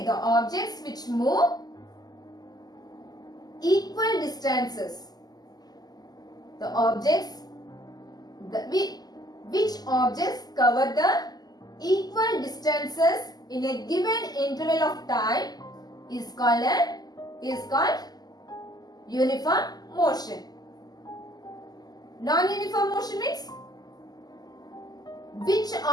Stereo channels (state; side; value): late; right; 0.19 ms